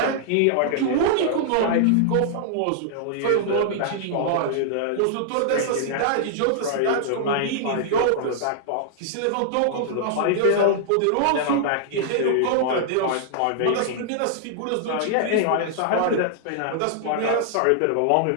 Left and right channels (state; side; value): different; both; correlation -0.01